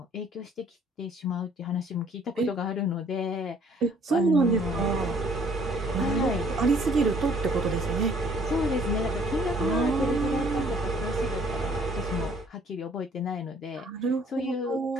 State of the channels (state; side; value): normal; both; correlation 0.59